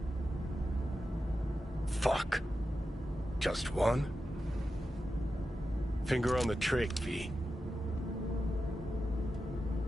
Fuck. Just one? Finger on the trick, V.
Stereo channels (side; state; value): both; normal; correlation 0.91